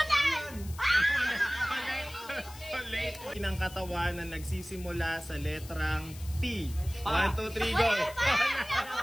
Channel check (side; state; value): left; noise; hiss, 17 dB below the sound